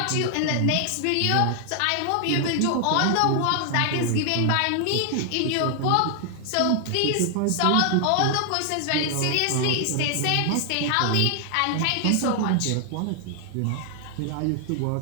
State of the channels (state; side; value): different; both; correlation 0.00